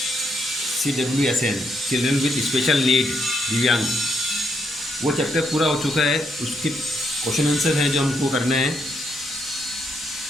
CWSN, children with special need, दिव्यांग, वो चैप्टर पूरा हो चुका है। उसके क्वेश्चन आंसर हैं जो हमको करना है।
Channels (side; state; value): both; normal; correlation 0.77